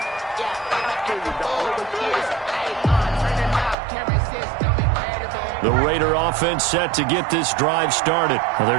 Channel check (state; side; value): drops out; left; at 3.8 s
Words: The Raider offense set to get this drive started. Well, there